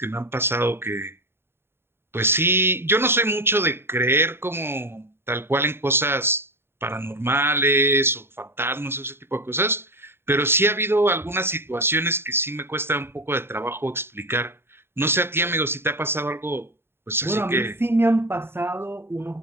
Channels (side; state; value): left; late; 0.11 ms